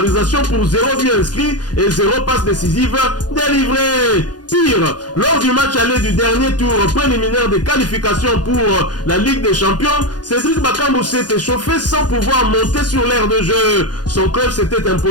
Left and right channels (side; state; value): right; late; 0.69 ms